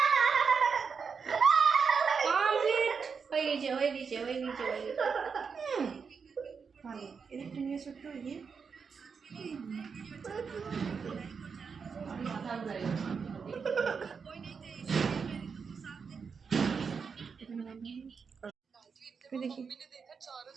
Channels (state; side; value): quieter; left; 5.8 dB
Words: কমপ্লিট হয়ে গেছে হয়ে গেছে হয়ে গেছে হয়ে গেছে। ভালো, এদিকটা নিয়ে ছোট্ট এগিয়ে।